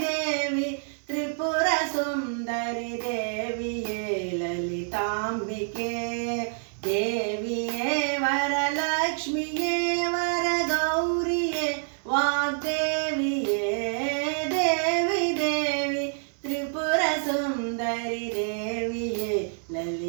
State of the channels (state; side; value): silent; left; digital silence